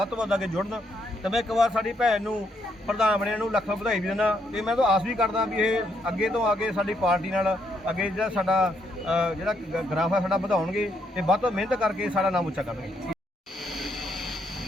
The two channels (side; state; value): both; normal; correlation 0.75